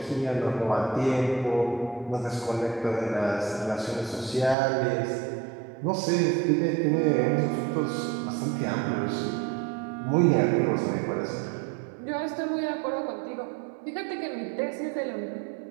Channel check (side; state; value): left; drops out; at 4.5 s